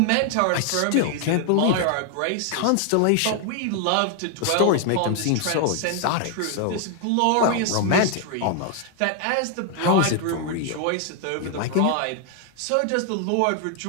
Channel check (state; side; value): different; both; correlation 0.00